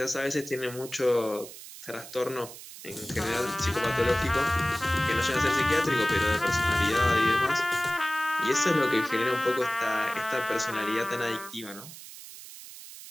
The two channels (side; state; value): right; noise; hiss, 15 dB below the sound